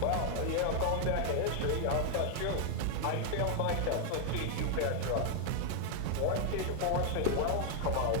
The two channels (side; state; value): both; different; correlation 0.00